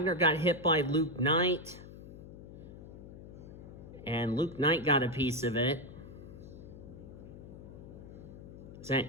got hit by Luke Knight. And Luke Knight got a piece of it. Is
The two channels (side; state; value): left; noise; hum, 14 dB below the sound